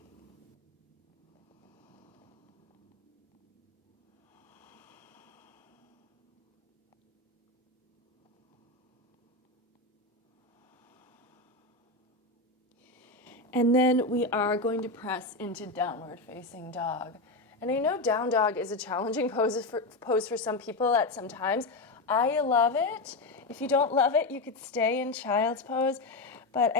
And then we are going to press into downward facing dog. And I know down dog is a challenging pose for some people at some times. I love it. If you don't love it, you could stay in child's pose. But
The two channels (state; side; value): quieter; right; 3.2 dB